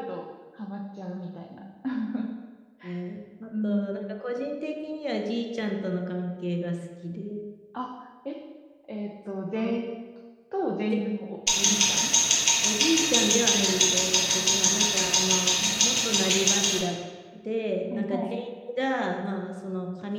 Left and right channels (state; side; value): identical; both; correlation 1.00